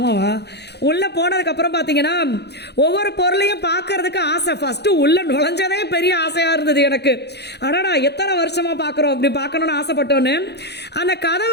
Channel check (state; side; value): late; right; 0.48 ms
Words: உள்ளே போனதுக்கப்புறம் பார்த்தீங்கன்னா ஒவ்வொரு பொருளையும் பார்க்கறதுக்கு ஆசை. ஃபஸ்ட்டு உள்ளே நுழைஞ்சதே பெரிய ஆசையாக இருந்தது எனக்கு. அடடா, எத்தனை வருஷமாக பார்க்குறோம், அப்படி பார்க்கணுன்னு ஆசைப்பட்டோன்னு. அந்த